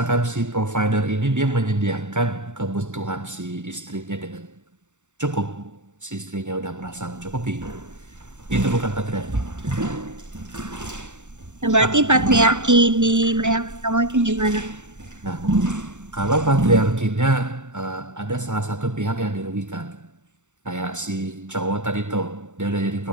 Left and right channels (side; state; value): left; late; 0.84 ms